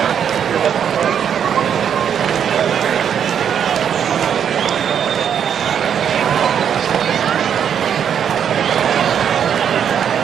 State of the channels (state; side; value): quieter; left; 8.4 dB